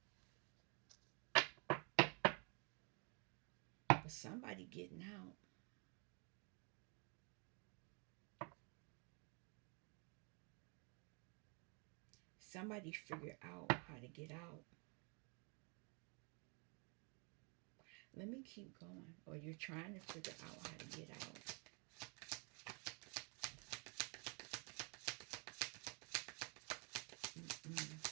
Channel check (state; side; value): quieter; left; 34.0 dB